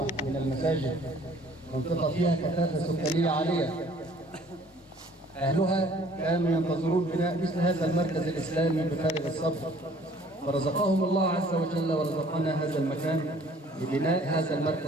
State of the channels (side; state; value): both; normal; correlation 0.55